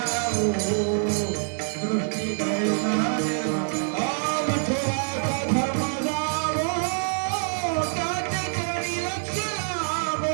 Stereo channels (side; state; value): left; silent; 61 dB below the other